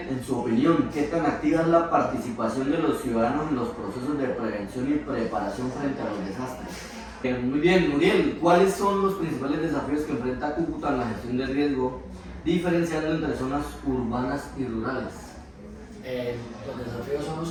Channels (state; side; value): identical; both; correlation 1.00